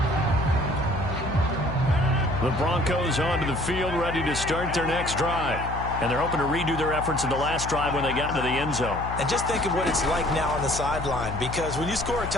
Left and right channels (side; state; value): left; noise; hum, 7 dB below the sound